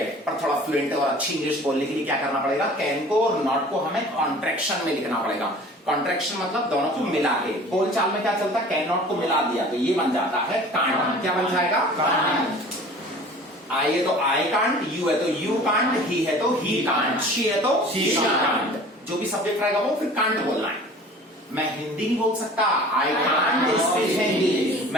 पर थोड़ा फ्लुएंट और अच्छी इंग्लिश बोलने के लिए क्या करना पड़ेगा? कैन को और नॉट को हमें कॉन्ट्रैक्शन में लिखना पड़ेगा। कॉन्ट्रैक्शन मतलब दोनों को मिला के। बोलचाल में क्या चलता है? कैन नॉट को मिला दिया तो ये बन जाता है कांट। क्या बन जाएगा? कांट। आई है तो आई कांट, यू है तो यू कांट, ही है तो ही कांट, शी है तो शी कांट। जो भी सब्जेक्ट रहेगा वो फिर कांट बोलना है। मैं हिंदी नहीं बोल सकता, आई कांट स्पीक हिंदी।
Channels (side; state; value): both; normal; correlation 0.45